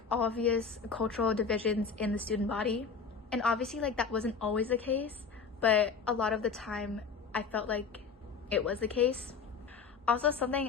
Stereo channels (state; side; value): quieter; right; 5.5 dB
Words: obvious cultural divisions in the student body. And obviously like that wasn't always the case, but a lot of the time I felt like it was the case. Also,